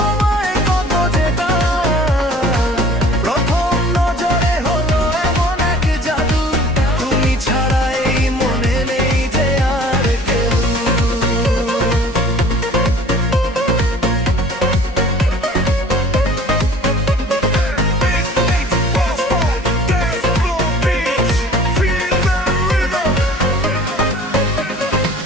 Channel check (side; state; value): both; normal; correlation 0.48